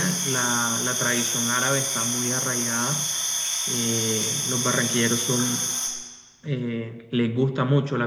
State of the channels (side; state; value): both; identical; correlation 1.00